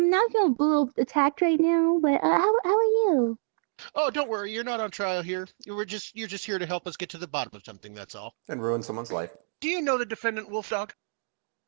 Not feeling a little attacked right now, but how are you? Oh, don't worry. You're not on trial here. You're just here to help us get to the bottom of something. That's all. And ruin someone's life. Do you know the defendant, Wolfdog?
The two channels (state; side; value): silent; left; digital silence